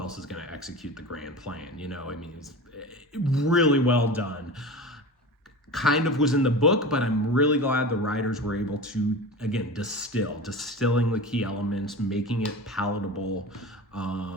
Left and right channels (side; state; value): both; normal; correlation 0.31